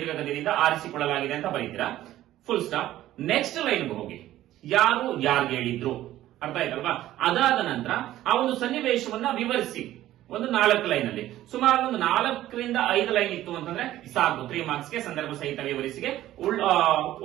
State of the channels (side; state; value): left; quieter; 14.1 dB